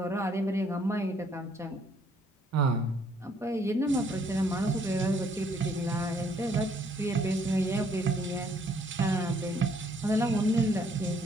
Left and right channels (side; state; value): both; normal; correlation 0.66